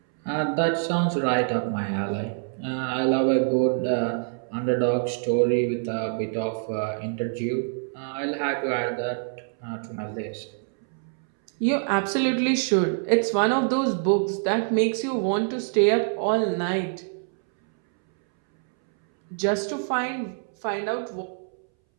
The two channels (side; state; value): left; silent; 61 dB below the other